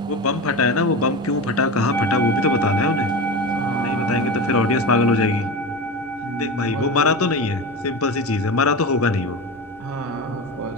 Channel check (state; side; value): normal; both; correlation 0.25